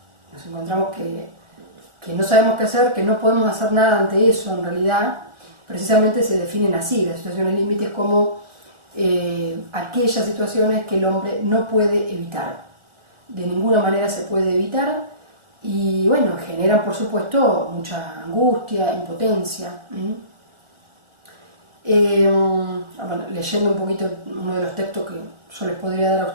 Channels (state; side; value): late; left; 1.4 ms